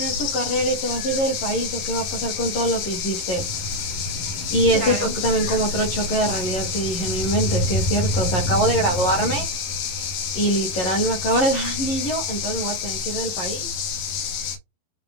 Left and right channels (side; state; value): right; late; 11 ms